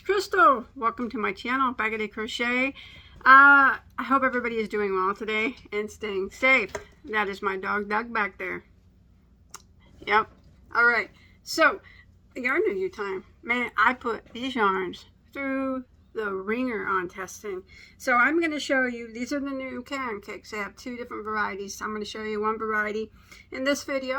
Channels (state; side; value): identical; both; correlation 1.00